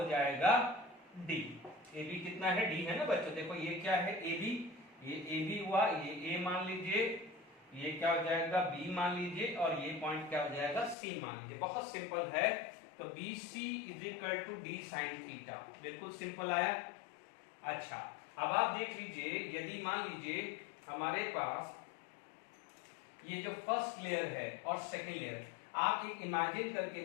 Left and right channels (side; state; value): right; drops out; at 11.0 s